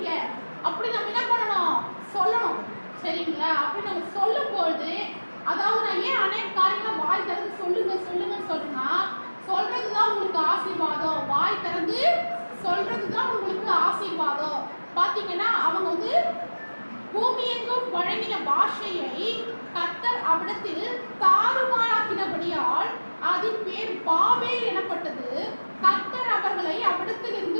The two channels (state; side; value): inverted; both; correlation -1.00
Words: அப்படி நம்ம என்ன பண்ணணும், சொல்லணும். சரிங்களா? அப்படி நம்ம சொல்லும் பொழுது, அதாவது நான் ஏன் அநேக காரியங்களை வாய் திறந்து சொல்லுங்கன்னு சொல்றேன்னா, சொல்றதுதான் உங்களுக்கு ஆசீர்வாதம். வாய் திறந்து சொல்றதுதான் உங்களுக்கு ஆசீர்வாதம். பாத்தீங்கன்னா அவங்க வந்து பூமி எங்கும் வழங்கின பாஷையை கர்த்தர் அவ்விடத்தில் தாறுமாறாக்கினபடியால் அதன் பேர் பாபேல் எனப்பட்டது. கர்த்தர் அவர்களை